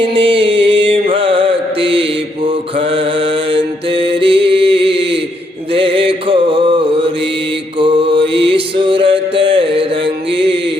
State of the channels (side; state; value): both; normal; correlation 0.75